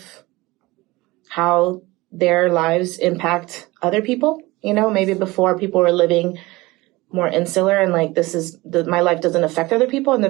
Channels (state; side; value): quieter; left; 21.0 dB